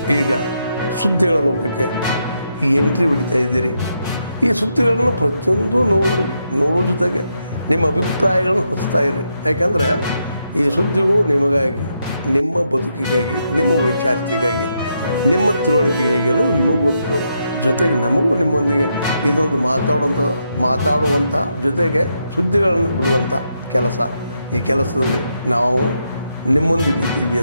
ಈಗ ಸುದ್ದಿಗಳ ಲೋಕಕ್ಕೆ ಎಂಟ್ರಿ ಹೊಡಿತಾ ಇದ್ದೀರಿ. ಈ ಸುದ್ದಿಗಳನ್ನು ಪ್ರತಿಯೊಂದು ನೋಡೋ ಜೊತೆಗೆ ನಿಮ್ಮ ಅಭಿಪ್ರಾಯಗಳನ್ನು ಹಚ್ತಾ ಇರಿ. ಯಾಕಂದರೆ ಈ ಸುದ್ದಿಗಳು ನಿಮಗಾಗಿ, ನಿಮ್ಮ ಬದುಕಿಗಾಗಿ, ನಿಮ್ಮ ವೈಚಾರಿಕೆಗಾಗಿ, ನಿಮ್ಮ ತಿಳುವಳಿಕೆಗಾಗಿಯೂ ನಿಮಗೂ ಗೊತ್ತು. ಜೊತೆಗೆ ನಮಗೂ ನಿಮ್ಮೊಂದಿಗೆ ಇದೊಂದು ಮಾತಾಡುವಂಥ ಜೊತೆಗೆ ಸುದ್ದಿಗಳನ್ನು ಬಿಡುವಂಥ ಕೆಲಸ. ಈ ಕೆಲಸದಲ್ಲಿ ನಾವು ನಿಮ್ಮೊಂದಿಗೆ ಇದ್ದೀವಿ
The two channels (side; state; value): both; inverted; correlation -0.81